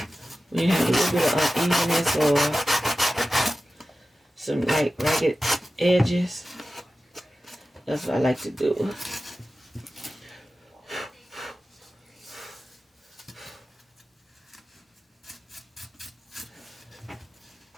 When you have a little bit of unevenness or some like ragged edges, that's what I like to do.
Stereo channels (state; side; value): normal; both; correlation 0.94